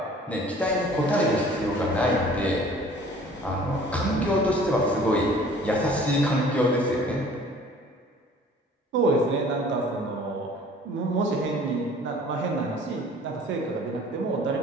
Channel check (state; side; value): normal; both; correlation 0.50